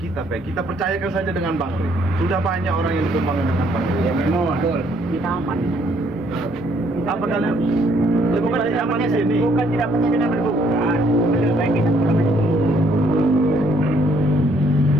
Peng. Kita percayakan saja dengan Bang Rey. Sudah banyak orang yang dikembangkan dengan Bang Rey. Ya memang betul. Kita aman. Apa kalian? Lebih baik aman di sini. Bukan tidak percaya dengan berbukan. Lebih baik kita pulang aja.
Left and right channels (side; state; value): both; normal; correlation 0.67